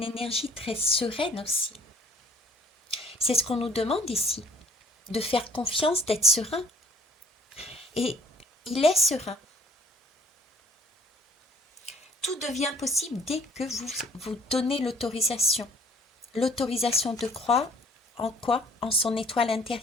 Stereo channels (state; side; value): normal; both; correlation 0.55